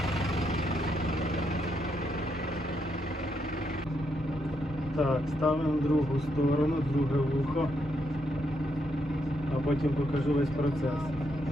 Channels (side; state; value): both; normal; correlation 0.78